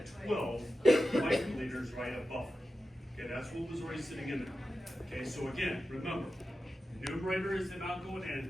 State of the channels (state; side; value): normal; both; correlation 0.93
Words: 12 microliters, right, of buffer. Okay, that's what was already sitting in there. Okay, so again, remember, numerator is the amount going